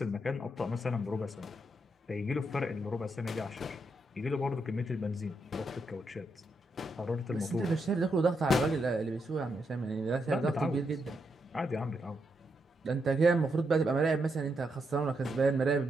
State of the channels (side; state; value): both; normal; correlation 0.81